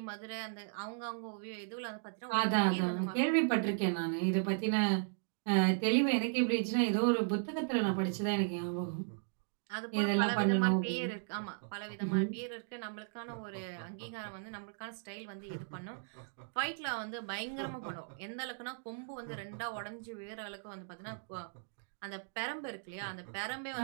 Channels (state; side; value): silent; left; digital silence